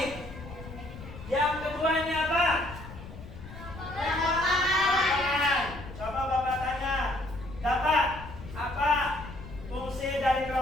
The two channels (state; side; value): noise; left; rumble, 13 dB below the sound